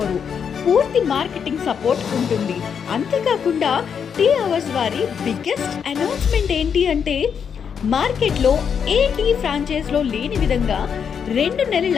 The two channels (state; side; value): quieter; right; 7.1 dB